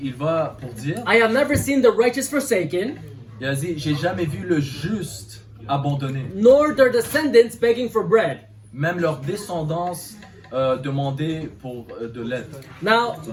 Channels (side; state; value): both; identical; correlation 1.00